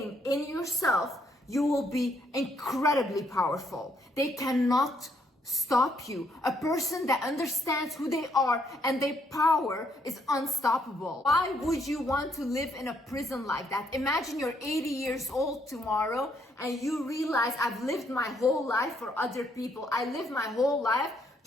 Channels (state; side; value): normal; both; correlation 0.72